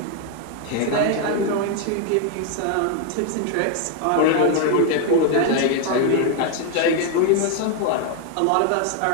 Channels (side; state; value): both; different; correlation 0.01